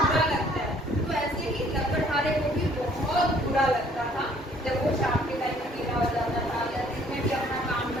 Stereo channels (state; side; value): normal; both; correlation 0.59